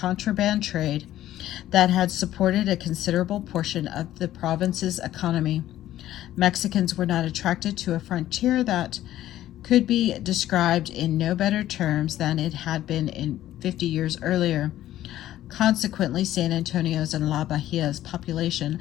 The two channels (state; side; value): quieter; right; 13.4 dB